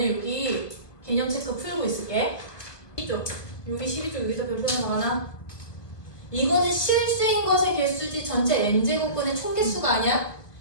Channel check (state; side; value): late; right; 1.7 ms